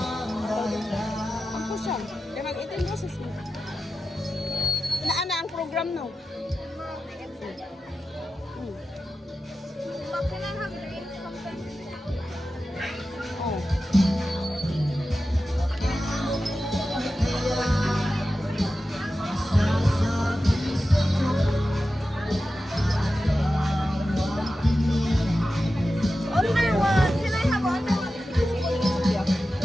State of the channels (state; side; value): normal; both; correlation 0.93